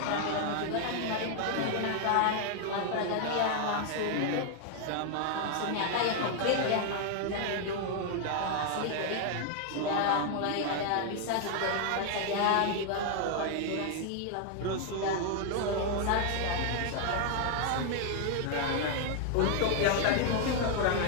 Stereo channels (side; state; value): both; different; correlation 0.00